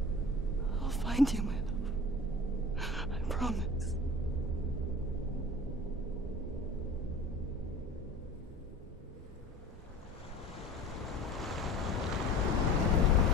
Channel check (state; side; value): normal; both; correlation 0.38